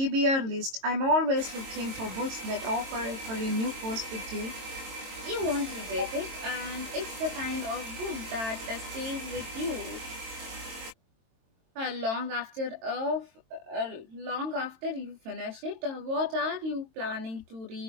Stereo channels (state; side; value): late; left; 22 ms